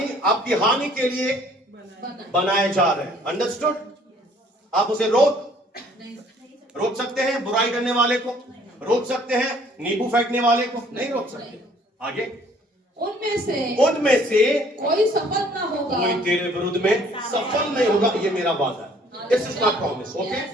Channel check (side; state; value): both; normal; correlation 0.58